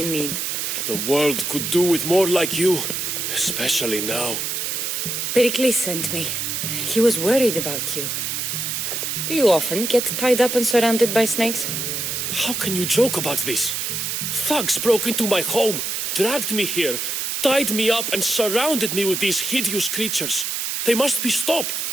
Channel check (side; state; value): right; noise; hiss, 2 dB below the sound